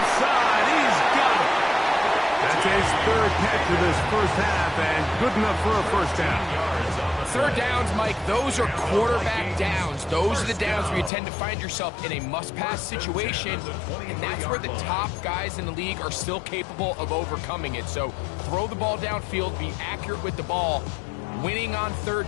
side. He's got it. That's his third catch of this first half, and good enough for a first down. Third downs, Mike, those are quarterback downs. Those are the downs where you tend to find yourself in a must-pass situation, and that's where the top guys in the league are still capable of overcoming it. So throw the ball downfield, be accurate with the ball. Winning on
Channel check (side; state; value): right; drops out; at 11.1 s